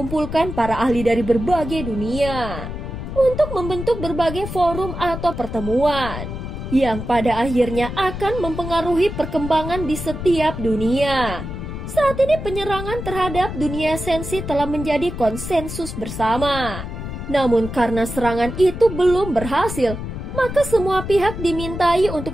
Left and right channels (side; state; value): left; noise; rumble, 7 dB below the sound